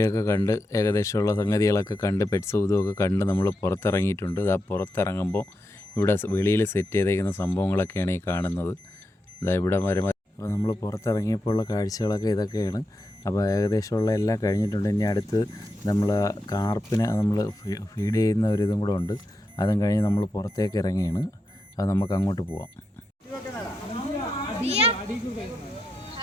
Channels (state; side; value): normal; both; correlation 0.87